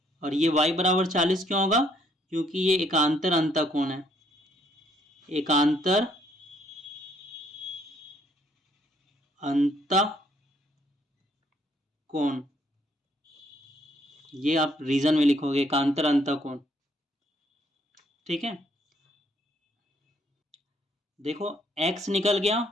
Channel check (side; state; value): both; normal; correlation 0.67